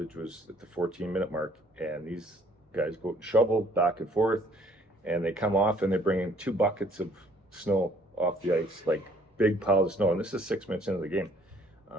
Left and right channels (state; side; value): normal; both; correlation 0.61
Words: was at the 14-minute mark, and these guys go and shovel back and forth, and they come off and they bring in 2 buckets of snow off the ice, like big piles of snow. And this is 6 minutes into the game.